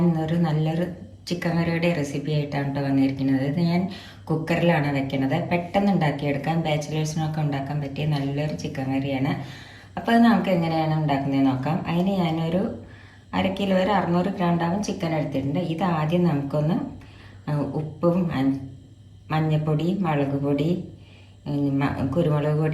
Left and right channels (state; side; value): identical; both; correlation 1.00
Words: ഇന്നൊരു നല്ലൊരു ചിക്കൻ കറിയുടെ റെസിപ്പി ആയിട്ടാണ് കേട്ടോ വന്നിരിക്കുന്നത്. ഇത് ഞാൻ കുക്കറിലാണ് വെക്കുന്നത്. പെട്ടെന്ന് ഉണ്ടാക്കിയെടുക്കാൻ, ബാച്ചിലേഴ്സിനൊക്കെ ഉണ്ടാക്കാൻ പറ്റിയ നല്ലൊരു ചിക്കൻ കറിയാണ്. അപ്പോൾ അത് നമുക്ക് എങ്ങനെയാണ് ഉണ്ടാക്കുന്നത് നോക്കാം. അതിന് ഞാനൊരു 1/2 കിലോ വരെ 600 ഗ്രാം ചിക്കൻ എടുത്തിട്ടുണ്ട്. ഇത് ആദ്യം നമുക്കൊന്ന് ഉപ്പും മഞ്ഞൾപ്പൊടി, മുളക് പൊടി, കുരുമുളക്